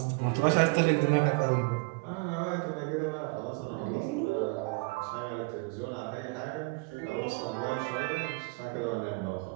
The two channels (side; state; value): left; quieter; 29.5 dB